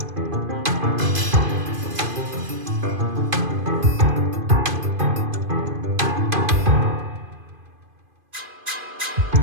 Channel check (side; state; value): left; late; 2.5 ms